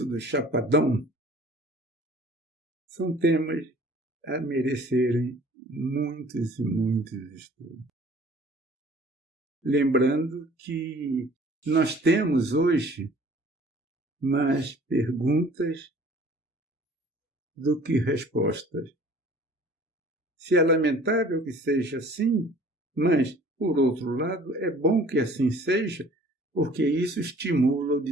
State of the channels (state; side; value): normal; both; correlation 0.51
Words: do Chapadão? São temas a merecerem muitos e muitos estudos. Lembrando que nós temos hoje mais perguntas do que respostas. Se é lamentável que seja assim, mas, por outro lado, é bom que assim seja, porque isso estimula o